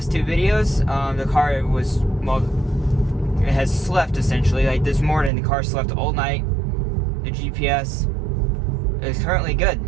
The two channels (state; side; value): drops out; left; at 5.3 s